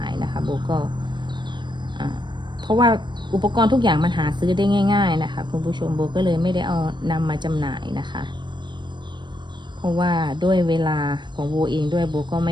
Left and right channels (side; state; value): left; late; 0.22 ms